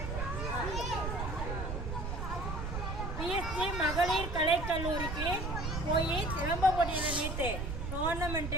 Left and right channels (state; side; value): noise; right; rumble, 4 dB below the sound